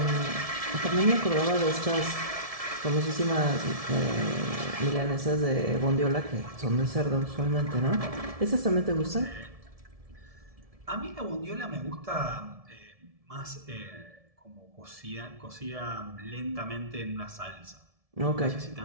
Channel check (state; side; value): late; left; 1.7 ms